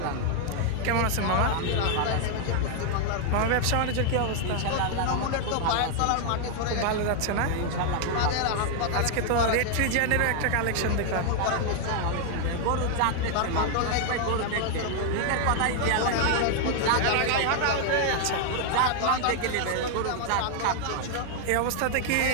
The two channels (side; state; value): both; different; correlation 0.00